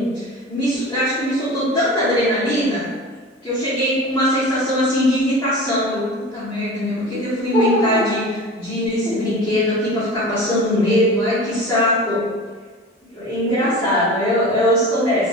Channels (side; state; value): both; normal; correlation 0.35